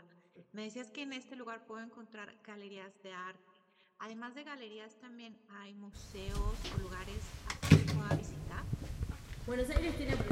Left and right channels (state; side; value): identical; both; correlation 1.00